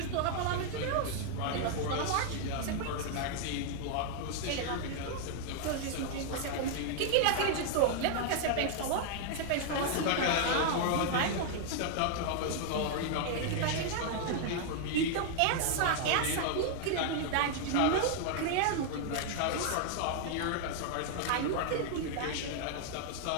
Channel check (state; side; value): different; both; correlation 0.00